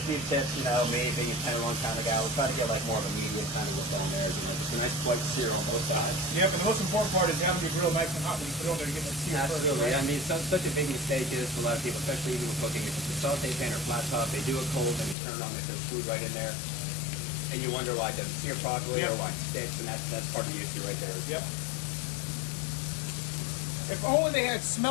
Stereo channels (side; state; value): right; drops out; at 15.2 s